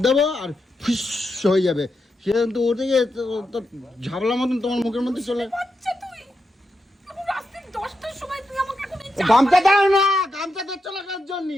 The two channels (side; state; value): both; normal; correlation 0.86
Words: দেবো আর ফিস হয়ে যাবে, সে কিন্তু ওটা গিয়ে তো ঝাবলা মতন তোমার মুখের মধ্যে চলে। বাচ্চা তুই। এখন রাত্রি 10টার সময় তুই আমাকে এখন এই গামছা দাও না, গামছা দিচ্ছ না কার জন্য?